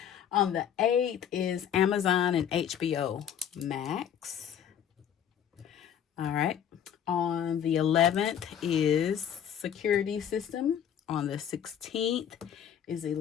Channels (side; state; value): right; quieter; 9.2 dB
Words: On the 8th is Amazon and HBO Max. All right. On the 11th is security system. On the 16th is